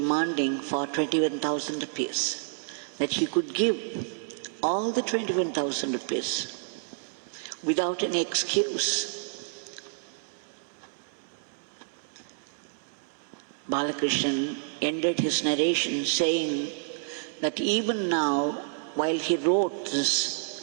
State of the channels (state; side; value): silent; left; digital silence